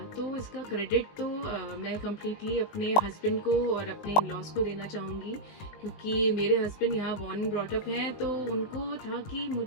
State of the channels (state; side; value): late; right; 19 ms